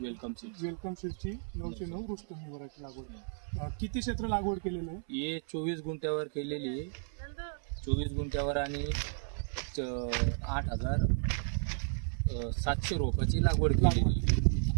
सीड्सची 909 रुस्तम ही व्हरायटी लागवड। किती क्षेत्र लागवड केलेलं आहे? हे 24 गुंठ्यावर केलेली आहे। 24 गुंठ्यावर आणि 8,700 रोपाची लागवड केलेली।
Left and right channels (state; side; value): silent; left; 56 dB below the other